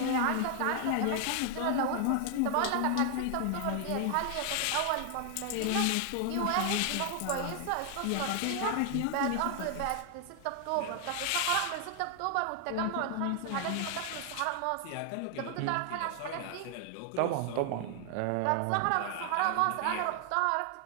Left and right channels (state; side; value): different; both; correlation 0.00